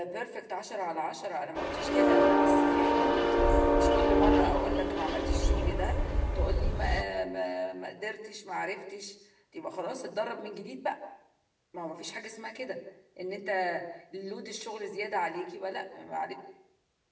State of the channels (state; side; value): identical; both; correlation 1.00